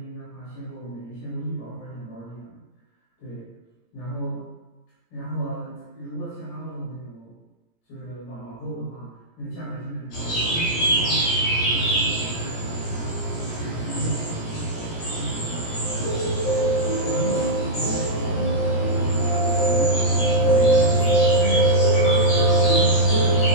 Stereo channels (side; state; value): right; late; 17 ms